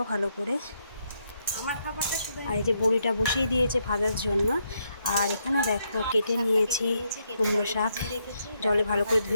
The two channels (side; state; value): both; inverted; correlation -0.78